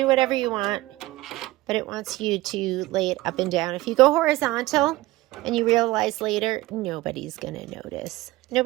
whatever you want, but it wants you to lay it up and down. If you go horizontal and you realize later, nobody's going to notice.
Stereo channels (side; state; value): left; quieter; 18.8 dB